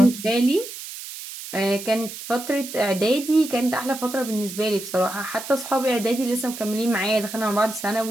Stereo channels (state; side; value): noise; right; hiss, 11 dB below the sound